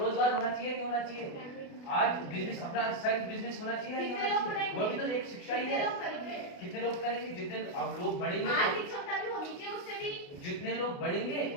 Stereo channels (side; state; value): right; late; 28 ms